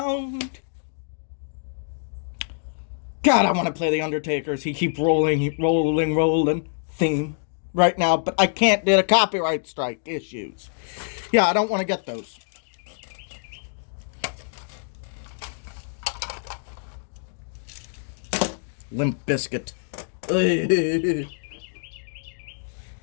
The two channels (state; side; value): silent; right; digital silence